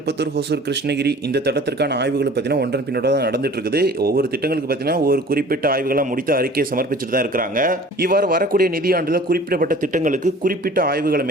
ஹொசூர், கிருஷ்ணகிரி இந்த திட்டத்திற்கான ஆய்வுகள் பார்த்தீங்கன்னா ஒன்றன் பின்னோட தான் நடந்துட்டு இருக்குது. ஒவ்வொரு திட்டங்களுக்கு பார்த்தீங்கன்னா ஒரு குறிப்பிட்ட ஆய்வுகளை முடித்து அறிக்கையை சமர்ப்பிச்சுட்டு தான் இருக்கிறாங்க. இவ்வாறு வரக்கூடிய நிதியாண்டில் குறிப்பிடப்பட்ட திட்டங்களுக்கு குறிப்பிட்ட ஆய்வுகளை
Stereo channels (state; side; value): normal; both; correlation 0.46